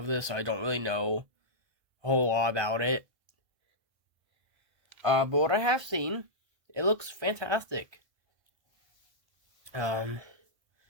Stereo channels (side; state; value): left; late; 1.5 ms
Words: this, so I don't really know a whole lot about it. But what I have seen, it looks fantastic. This